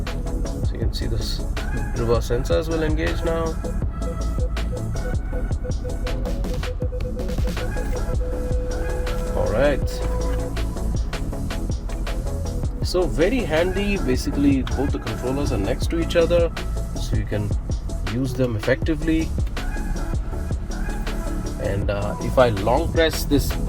so you can see this reverse sensors will engage now. Alright, so very handy. Basically both the controllers are next to each other, so you can use them effectively. And if I long press this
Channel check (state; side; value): identical; both; correlation 1.00